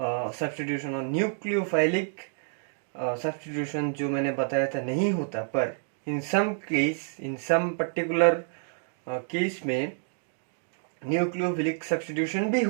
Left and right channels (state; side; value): silent; left; digital silence